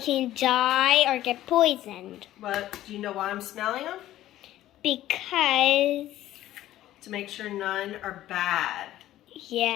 can die or get poisoned. But do you know why I'm smelling them? Because... To make sure none are bad.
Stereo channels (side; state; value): right; quieter; 14.0 dB